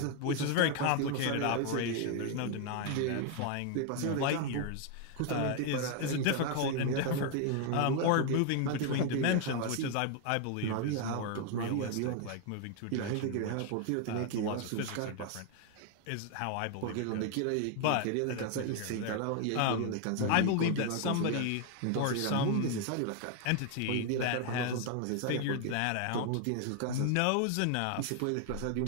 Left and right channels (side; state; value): both; different; correlation 0.00